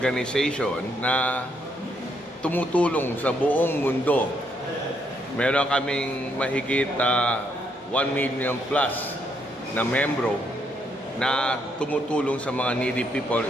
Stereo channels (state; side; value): normal; both; correlation 0.74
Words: na tumutulong sa buong mundo. Meron kaming mahigit 1 million plus na membro na tumutulong sa mga needy people,